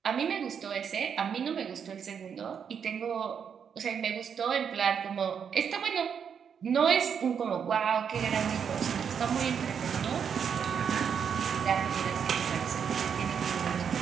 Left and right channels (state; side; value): quieter; left; 7.3 dB